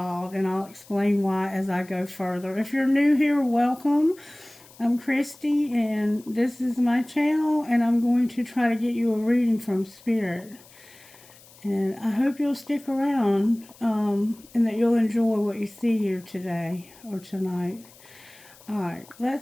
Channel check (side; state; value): left; noise; hiss, 24 dB below the sound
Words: and I'll explain why as I go further. If you're new here, welcome. I'm Christy, and this is my channel, and I'm going to try to get you a reading from Spirit. And I hope you'll stick around, and that you'll enjoy what you see here today or tonight. Alright,